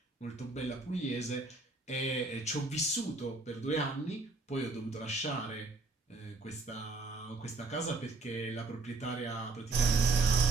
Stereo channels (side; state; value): left; quieter; 3.5 dB